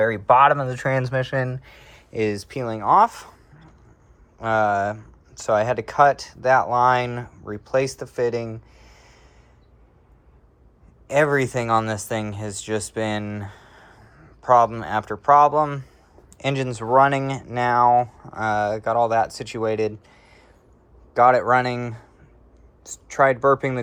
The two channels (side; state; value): both; identical; correlation 1.00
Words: bottom of the transmission is peeling off. So I had to cut that line, replace the fitting. Everything on this thing has just been problem after problem. Engine's running now. Got all that situated. Got it running. Tried burping